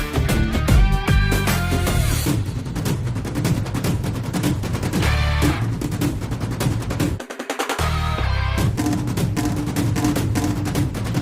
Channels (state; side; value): identical; both; correlation 1.00